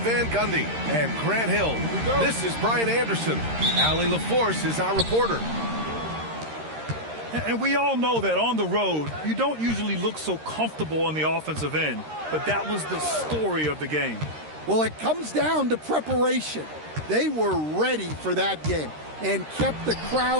Van Gundy and Grant Hill. This is Brian Anderson. Allie LaForce is our reporter. And we all know that on the road, you don't usually look so comfortable on the offensive end. But that was the story of the game. Well, it comes down to preparation. They were ready for that game and kept the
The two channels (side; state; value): left; late; 13 ms